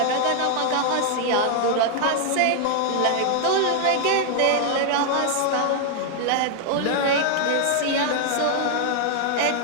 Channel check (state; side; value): different; both; correlation 0.00